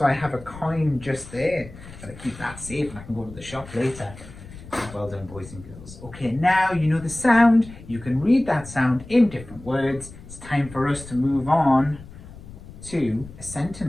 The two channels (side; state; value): left; noise; rumble, 17 dB below the sound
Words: I have a coin just there. Gotta keep that safe and I can go to the shop later. Well done, boys and girls. Okay, now you know the sound. You can read that sound in different words. It's time for us to move on to a